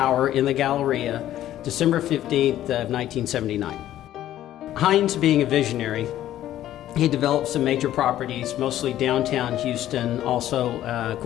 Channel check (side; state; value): right; quieter; 12.8 dB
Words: in the Galleria, December 15th of 1979. Hines, being a visionary, he developed some major properties, mostly downtown Houston. Also, of